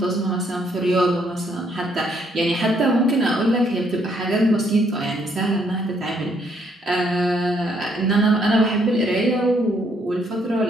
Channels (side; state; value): both; normal; correlation 0.70